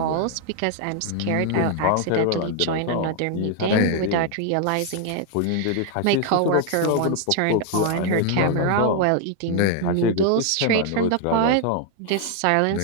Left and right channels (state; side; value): different; both; correlation 0.00